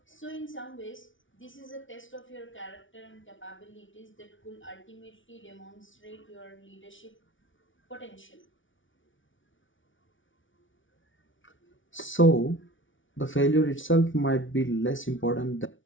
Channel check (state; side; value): late; right; 0.56 ms